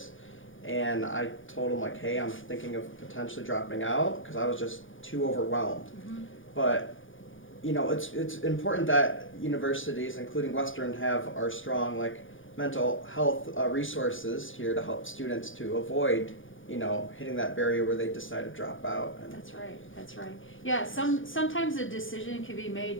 and I told them like, hey, I'm thinking of potentially dropping out because I was just too overwhelmed. But you know, it's important that universities, including Western, have our strong like mental health resources here to help students to avoid, you know, hitting that barrier where they decide to drop out. And That's right, that's right. Yeah, sometimes a decision can be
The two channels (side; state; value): right; late; 0.58 ms